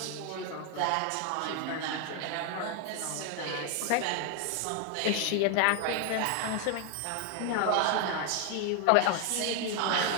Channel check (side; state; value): both; different; correlation 0.01